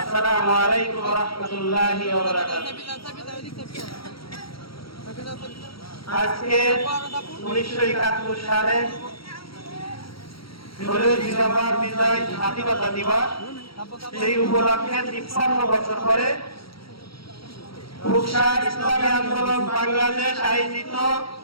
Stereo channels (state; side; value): late; right; 0.75 ms